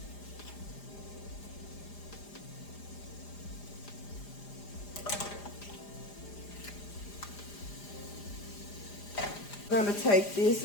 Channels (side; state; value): right; late; 4.9 ms